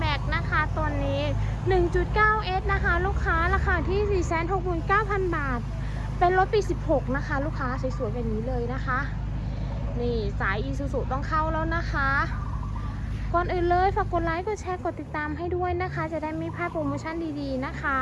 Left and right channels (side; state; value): both; identical; correlation 1.00